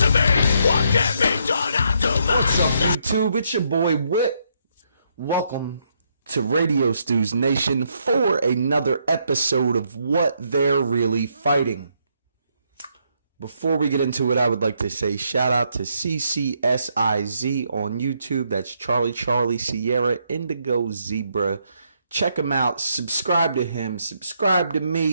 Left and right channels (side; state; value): both; inverted; correlation -0.75